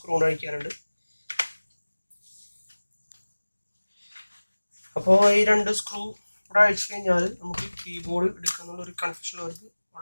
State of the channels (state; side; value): inverted; both; correlation -1.00